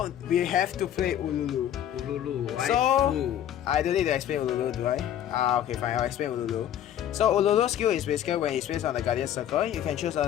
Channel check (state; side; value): quieter; right; 10.7 dB